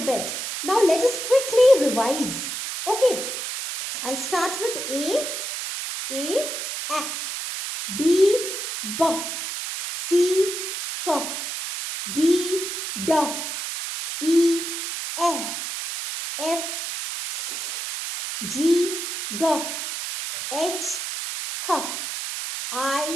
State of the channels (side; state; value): right; noise; hiss, 5 dB below the sound